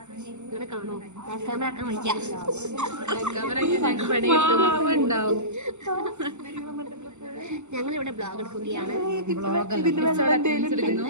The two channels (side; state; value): left; late; 0.83 ms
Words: ഇവിടെ കാണോ ക്യാമറ ആക്കാൻ വയ്ക്കാം. ഞങ്ങളിവിടെ ബ്ലോഗ് എടുക്കുകയാണ്.